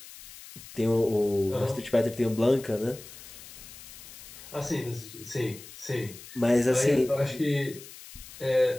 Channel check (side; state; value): left; noise; hiss, 16 dB below the sound